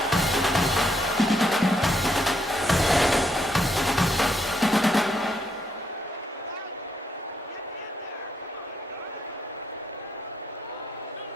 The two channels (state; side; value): normal; both; correlation 0.76